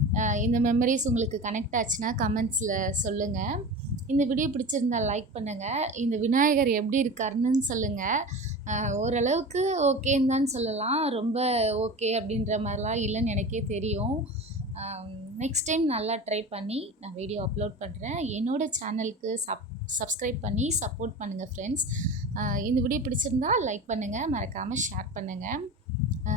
இந்த மெமரிஸ் உங்களுக்கு கனெக்ட் ஆச்சுன்னா கமெண்ட்ஸில் சொல்லுங்கள். இந்த வீடியோ பிடிச்சிருந்தால் லைக் பண்ணுங்கள். இந்த விநாயகர் எப்படி இருக்காருன்னு சொல்லுங்கள். ஓரளவுக்கு ஓகேன்னு தான் சொல்லலாம். ரொம்ப ஓகே அப்படின்ற மாதிரிலாம் இல்லைன்னு எனக்கே தெரியும். நெக்ஸ்ட் டைம் நல்லா ட்ரை பண்ணி நான் வீடியோ அப்லோட் பண்ணுறேன். என்னோடய சேனலுக்கு சப்ஸ்கிரைப் பண்ணி சப்போர்ட் பண்ணுங்கள் ஃப்ரெண்ட்ஸ். இந்த வீடியோ பிடிச்சிருந்தா லைக் பண்ணுங்கள், மறக்காமல் ஷேர் பண்ணுங்கள்.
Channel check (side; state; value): both; normal; correlation 0.31